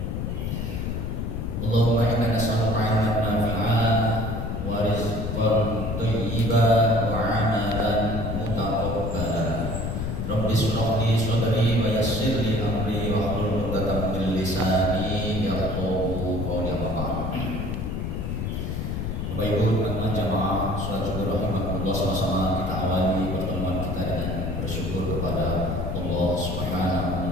Allahumma inna nas'aluka 'ilman nafi'an wa rizqan thayyiban wa 'amalan mutaqabbalan. Rabbi shrah li sadri wa yassir li amri wa hlul 'uqdatam min lisani yafqahu qawli. Bapak Ibu teman-teman jamaah salat zuhur rahimakumullah, sama-sama kita awali pertemuan kita dengan bersyukur kepada Allah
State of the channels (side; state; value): left; noise; rumble, 2 dB below the sound